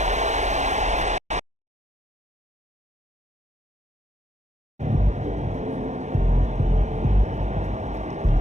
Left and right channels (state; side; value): late; left; 0.34 ms